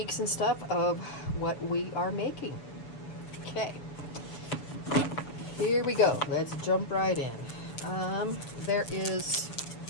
and stuff of what we are making. Okay, here we go. Let's jump right in. There is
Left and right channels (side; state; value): right; late; 7.1 ms